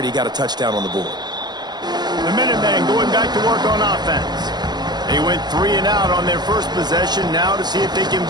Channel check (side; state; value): left; late; 0.20 ms